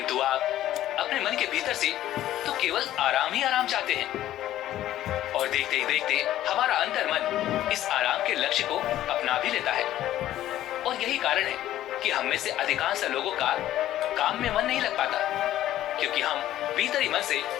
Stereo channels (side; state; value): right; quieter; 13.3 dB